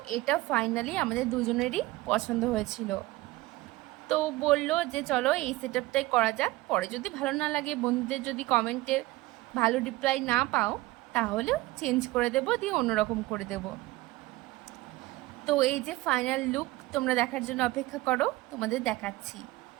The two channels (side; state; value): left; quieter; 18.9 dB